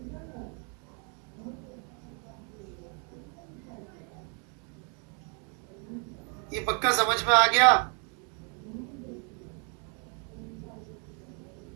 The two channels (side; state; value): left; quieter; 38.3 dB